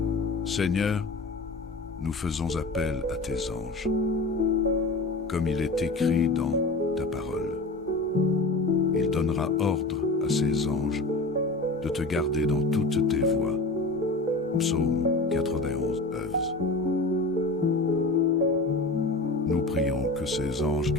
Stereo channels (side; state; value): right; quieter; 3.2 dB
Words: Seigneur, nous faisons appel à tes anges, comme il est écrit dans ta parole. Il donnera ordre à ses anges de te garder dans toutes tes voies. Psaume 91, 11. Nous prions que ces anges